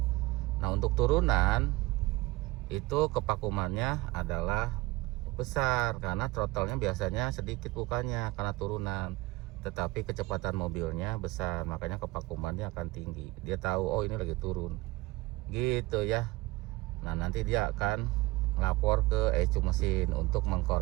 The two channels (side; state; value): left; quieter; 20.5 dB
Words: Nah, untuk turunan itu kevakumannya adalah besar, karena throttle-nya biasanya sedikit bukanya karena turunan, tetapi kecepatan mobilnya besar, makanya kevakumannya akan tinggi. Dia tahu, oh ini lagi turun gitu ya. Nah, nanti dia akan lapor ke ECU mesin untuk